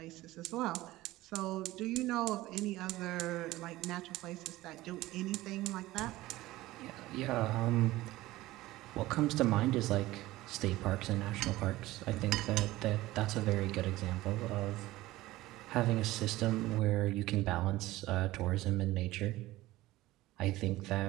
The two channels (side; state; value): left; quieter; 17.5 dB